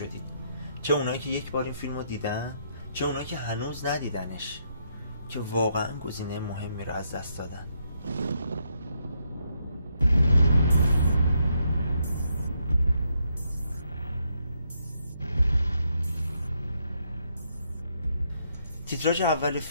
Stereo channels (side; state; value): both; inverted; correlation -0.76